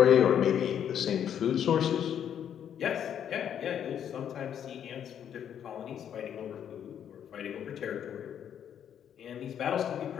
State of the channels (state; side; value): quieter; right; 9.2 dB